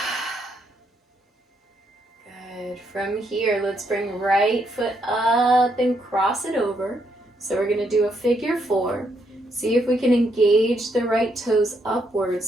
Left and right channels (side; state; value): both; normal; correlation 0.76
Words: From here, let's bring right foot up and cross it over. So we're going to do a figure 4. See if we can engage the right toes